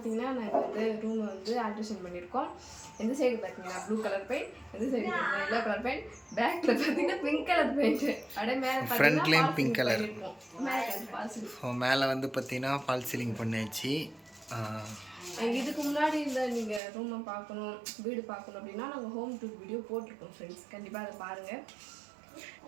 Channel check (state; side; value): drops out; left; at 16.8 s